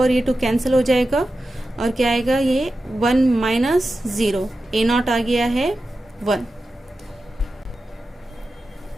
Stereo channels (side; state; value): both; normal; correlation 0.92